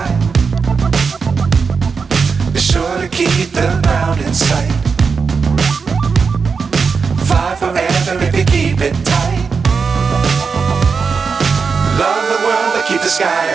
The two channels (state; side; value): quieter; left; 5.3 dB